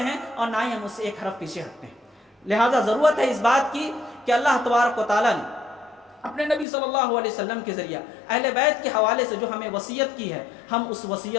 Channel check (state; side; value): drops out; right; at 6.7 s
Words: اور نہ ہی ہم اس سے ایک حرف پیچھے ہٹتے ہیں۔ لہٰذا ضرورت ہے اس بات کی کہ اللہ تبارک و تعالیٰ نے اپنے نبی صلی اللہ علیہ وسلم کے ذریعہ اہل بیت کے حوالے سے جو ہمیں وصیت کی ہے، ہم اس